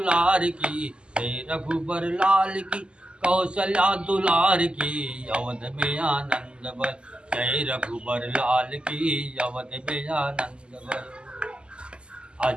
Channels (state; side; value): late; left; 0.051 ms